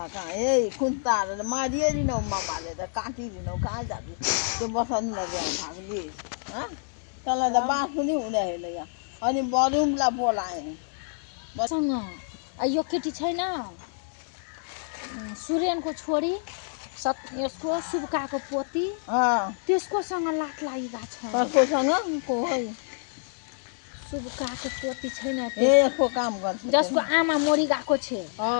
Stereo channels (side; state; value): right; silent; digital silence